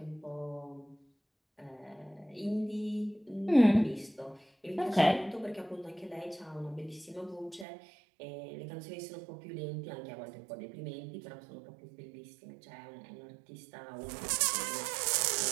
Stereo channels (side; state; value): left; drops out; at 7.7 s